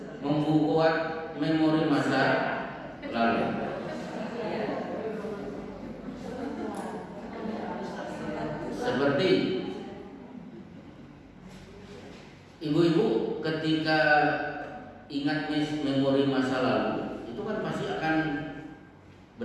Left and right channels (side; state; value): both; identical; correlation 1.00